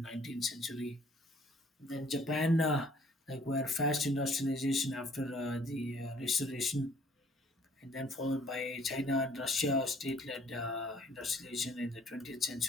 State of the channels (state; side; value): normal; both; correlation 0.59